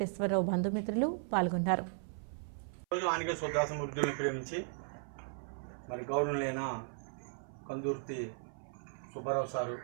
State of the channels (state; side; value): silent; left; 53 dB below the other